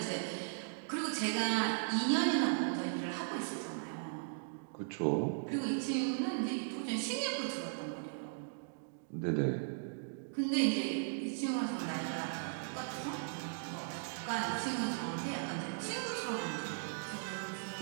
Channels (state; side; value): silent; left; digital silence